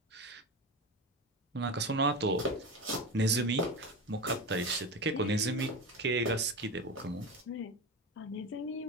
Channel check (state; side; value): normal; both; correlation 0.23